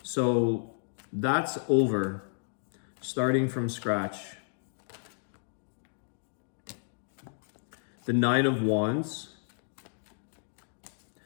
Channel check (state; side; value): silent; right; digital silence